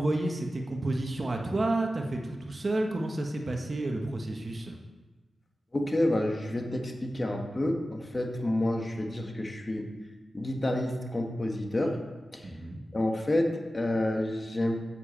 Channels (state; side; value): normal; both; correlation 0.94